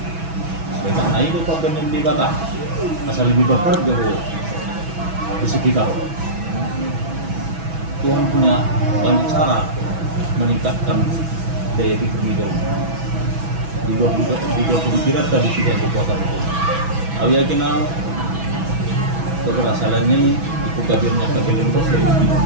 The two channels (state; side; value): late; left; 6.1 ms